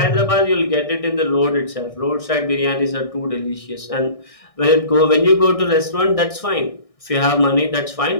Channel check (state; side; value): late; right; 1.6 ms